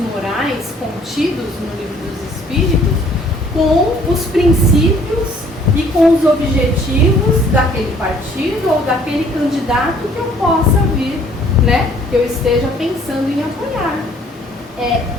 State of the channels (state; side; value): normal; both; correlation 0.59